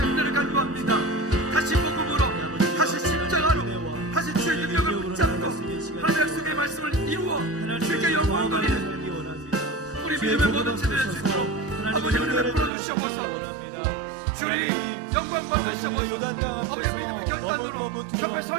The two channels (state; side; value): drops out; left; at 12.7 s